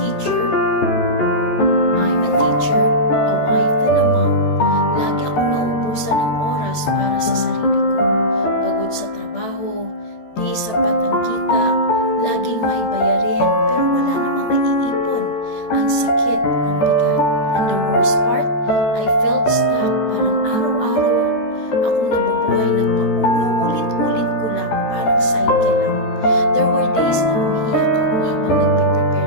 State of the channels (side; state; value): right; late; 14 ms